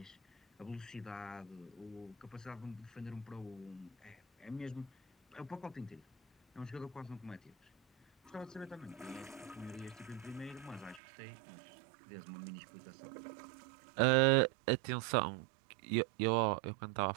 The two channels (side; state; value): left; drops out; at 11.0 s